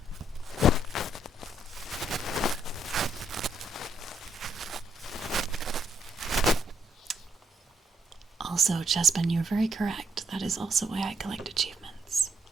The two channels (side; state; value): both; normal; correlation 0.73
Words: Also, Chespin, you're very correct. That is also why I collect achievements.